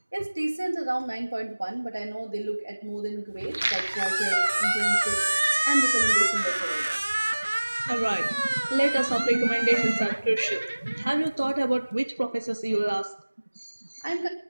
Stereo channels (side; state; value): both; inverted; correlation -1.00